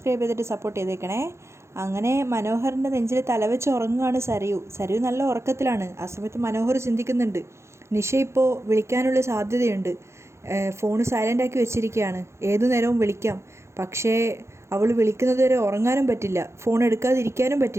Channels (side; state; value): left; late; 0.13 ms